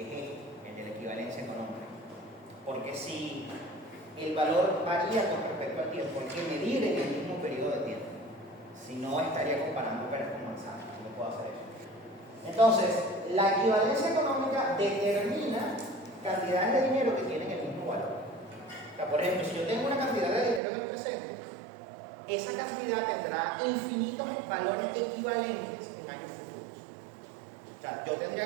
es el de la equivalencia económica. Porque si el valor varía con respecto al tiempo, hay que medir en el mismo periodo de tiempo. Si no, estaría comparando peras con manzanas. No puedo hacer eso. Entonces, la equivalencia económica determina cantidades de dinero que tienen el mismo valor. O sea, por ejemplo, si yo tengo una cantidad de dinero en el presente, esa cantidad tendrá infinitos valores equivalentes en años futuros. O sea, yo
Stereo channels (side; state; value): left; drops out; at 20.6 s